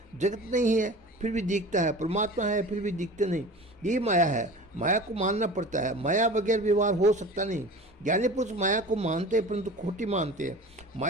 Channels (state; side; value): normal; both; correlation 0.38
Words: जगत नहीं है फिर भी दिखता है, परमात्मा है फिर भी दिखते नहीं, यही माया है। माया को मानना पड़ता है, माया बगैर व्यवहार हो सकता नहीं। ज्ञानी पुरुष माया को मानते हैं परंतु खोटी मानते हैं।